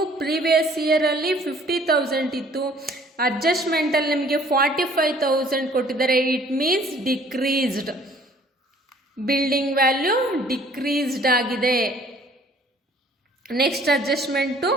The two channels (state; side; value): normal; both; correlation 0.56